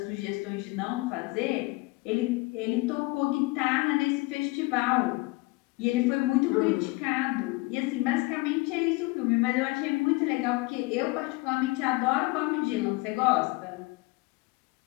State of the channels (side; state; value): right; quieter; 23.8 dB